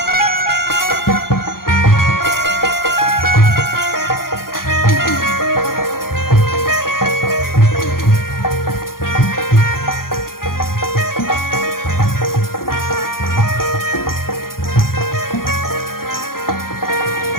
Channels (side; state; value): right; late; 0.92 ms